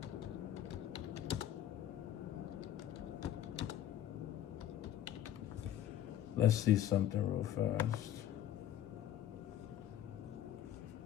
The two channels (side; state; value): right; quieter; 11.2 dB